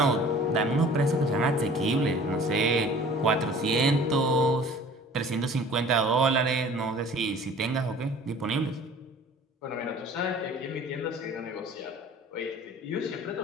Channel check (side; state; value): both; normal; correlation 0.47